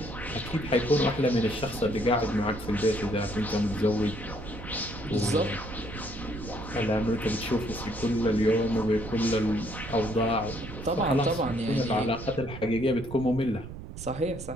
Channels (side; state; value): right; noise; rumble, 11 dB below the sound